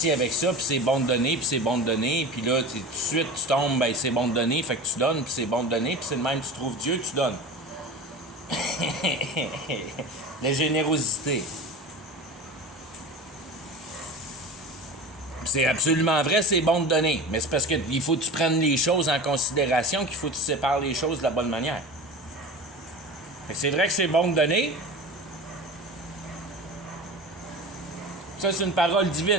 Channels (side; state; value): both; normal; correlation 0.32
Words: avec ça, puis c'est bon de données, puis c'est bon de données. Puis là, tout de suite, tu tombes, ben c'est bon de données, fait que tu donnes, puis c'est bon de données, puis c'est le même, tu trouves Dieu, tu donnes. La générosité. C'est absolument vrai, c'est bon de donner. Mais c'est parce qu'il faut que tu prennes les choses en considération, qu'il faut que tu sépares les choses de la bonne manière. Fait que c'est vrai que c'est bon de donner. Ça, c'est une parole